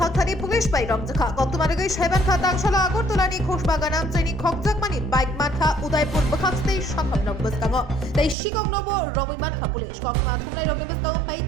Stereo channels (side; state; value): left; drops out; at 8.3 s